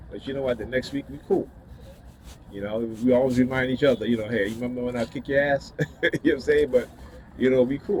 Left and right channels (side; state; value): both; identical; correlation 1.00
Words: but you know what? The next week we cool. You know, we always remind each other, you know, hey, you remember when I kick your ass? You know what I'm saying? But you know, we